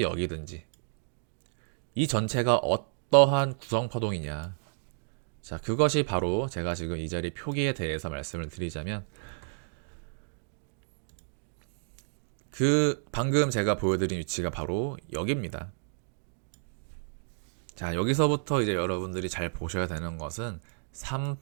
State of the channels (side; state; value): left; silent; digital silence